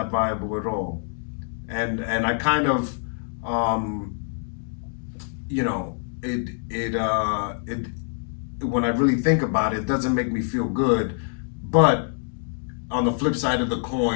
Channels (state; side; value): silent; right; 62 dB below the other